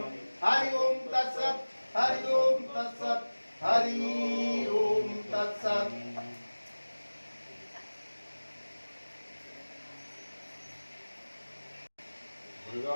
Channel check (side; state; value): both; inverted; correlation -1.00